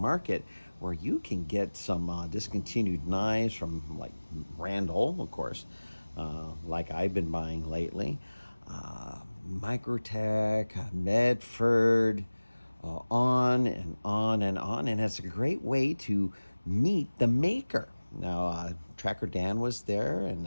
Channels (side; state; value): both; inverted; correlation -1.00